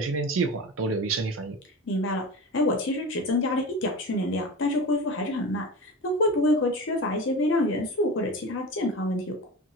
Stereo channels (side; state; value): both; normal; correlation 0.30